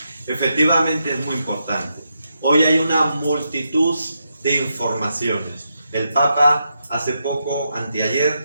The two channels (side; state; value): both; inverted; correlation -0.84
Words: efectivamente es muy importante. Hoy hay una multitud de informaciones. El Papa hace poco,